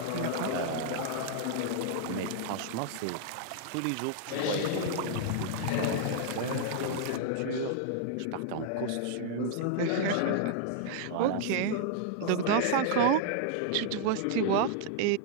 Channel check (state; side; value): different; both; correlation -0.01